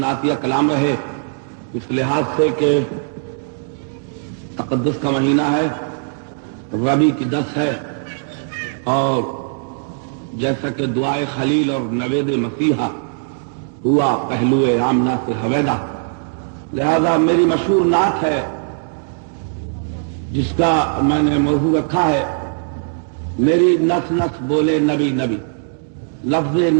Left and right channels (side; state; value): left; silent; digital silence